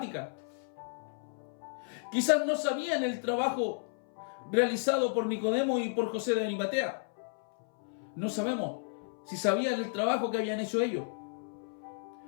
Quizás no sabían el trabajo realizado por Nicodemo y por José de Arimatea. No sabemos si sabían el trabajo que habían hecho ellos.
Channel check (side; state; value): right; silent; 56 dB below the other